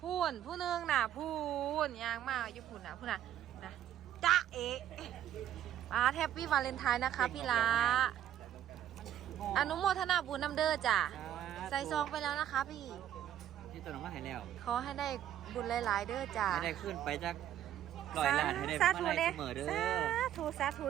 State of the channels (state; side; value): quieter; left; 11.2 dB